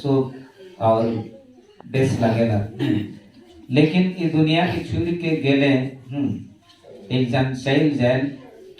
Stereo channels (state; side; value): identical; both; correlation 1.00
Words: और बेस लगेला। लेकिन ये दुनिया की छुड़ के गेले एक जन चल जाए